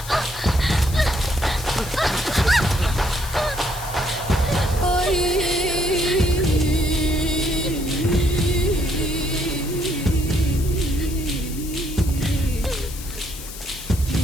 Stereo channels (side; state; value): left; noise; hiss, 13 dB below the sound